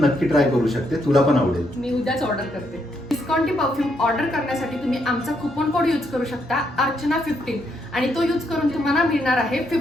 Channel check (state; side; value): normal; both; correlation 0.77